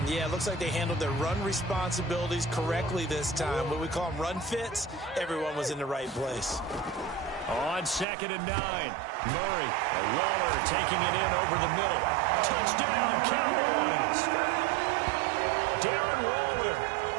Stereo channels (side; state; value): left; drops out; at 8.1 s